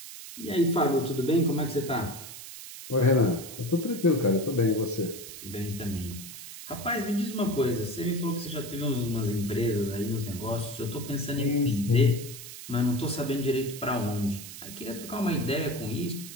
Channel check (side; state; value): right; noise; hiss, 12 dB below the sound